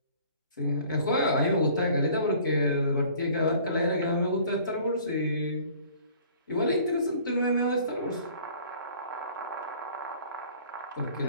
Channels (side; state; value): both; inverted; correlation -0.51